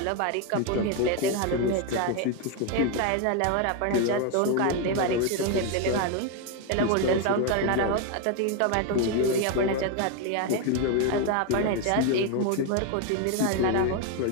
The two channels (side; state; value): both; different; correlation 0.01